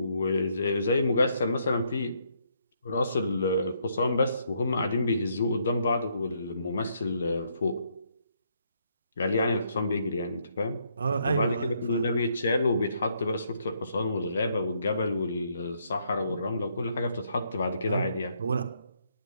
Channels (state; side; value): inverted; both; correlation -0.73